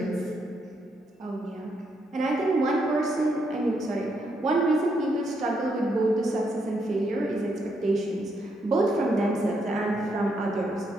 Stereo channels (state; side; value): normal; both; correlation 0.77